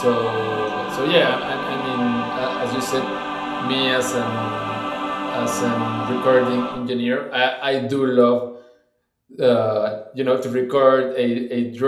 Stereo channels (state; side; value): identical; both; correlation 1.00